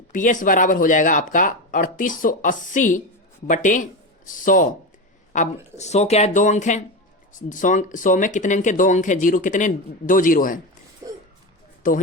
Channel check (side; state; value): both; normal; correlation 0.18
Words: पीएस बराबर हो जाएगा आपका 3880 बटे 100। अब 100 क्या है? 2 अंक है। 100 में कितने अंक है? 2 अंक है। जीरो कितने? 2 जीरो है, तो